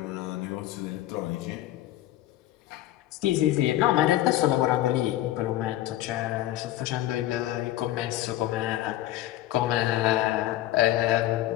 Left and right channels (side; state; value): right; quieter; 14.4 dB